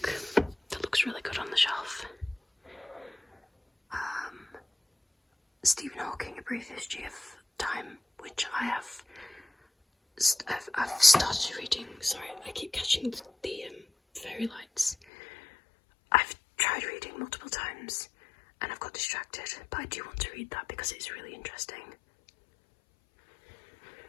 that looks really good on the shelf. Stephen Hawking, A Brief History of Time, which I've started reading. Sorry, I keep catching the fairy lights. I've tried reading multiple times and I've got distracted, but I do want to read that because it's really interesting.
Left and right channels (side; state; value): right; drops out; at 15.0 s